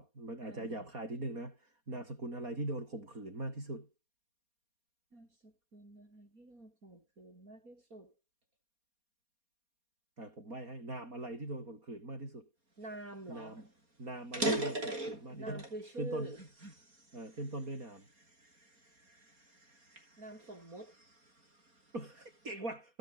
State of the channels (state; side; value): late; left; 4.2 ms